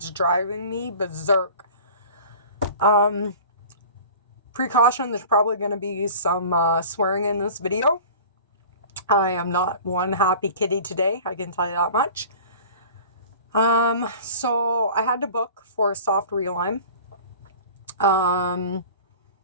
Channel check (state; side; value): inverted; both; correlation -0.42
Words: driving me berserk. Precaution, there's probably going to be some swearing in this video. I am not one happy kitty today, I can tell you that much. So I had to book for a soft realign.